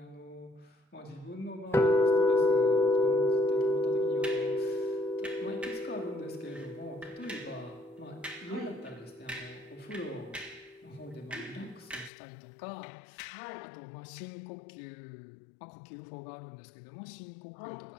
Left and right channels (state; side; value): drops out; right; at 12.1 s